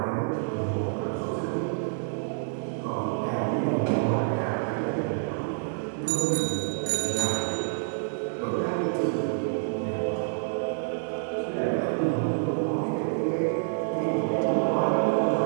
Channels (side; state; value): left; silent; digital silence